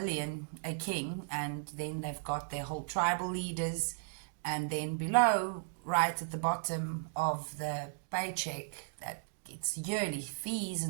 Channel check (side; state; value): left; silent; digital silence